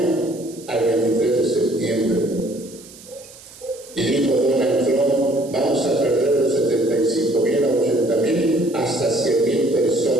al 23 de septiembre. Y dijo Donald Trump, vamos a perder de 75,000 a 80,000 hasta 100,000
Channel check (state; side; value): noise; right; hiss, 20 dB below the sound